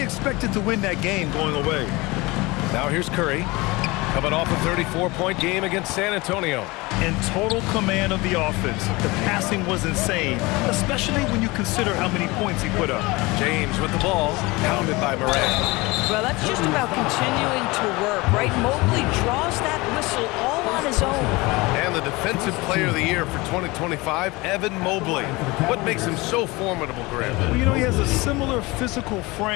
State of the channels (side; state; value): right; quieter; 23.1 dB